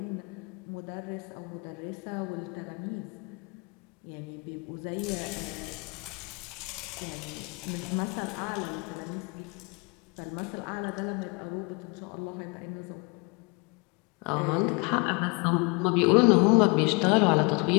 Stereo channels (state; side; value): quieter; right; 29.7 dB